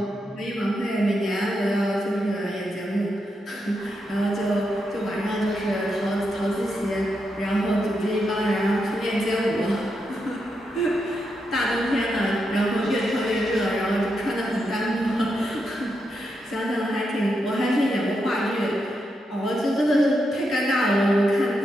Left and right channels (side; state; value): both; normal; correlation 0.84